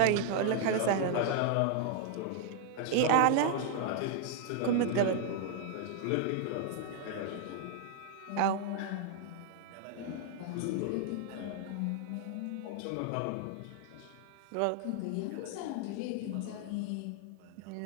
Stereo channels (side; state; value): both; different; correlation 0.00